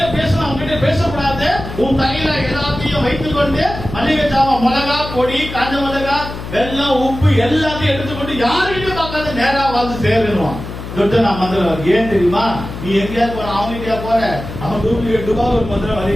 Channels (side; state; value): left; noise; hum, 10 dB below the sound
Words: பேசணும் உங்ககிட்ட பேசக்கூடாது, உன் தலையில எல்லாத்தையும் வைத்துக் கொண்டு மல்லிகை ஜாமான், மிளகா பொடி, காஞ்ச மிளகா, வெல்லம், உப்பு எல்லாத்தையும் எடுத்துக்கொண்டு யாருக்கிட்ட பார்க்காத நேரா வந்து சேரணும். தொட்ட மந்திரவாதி ஏன் தெரியுமா? நீ எங்கேயாவது போற, அவங்ககிட்டயா போற, அவன் டூப்ளிகேட் ரூபாய் ஒரு மந்திரவாதி